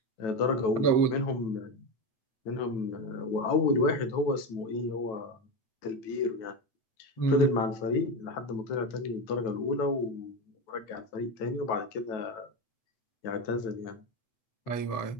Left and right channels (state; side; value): late; right; 9.1 ms